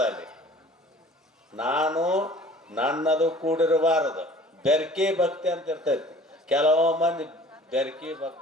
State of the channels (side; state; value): both; normal; correlation 0.48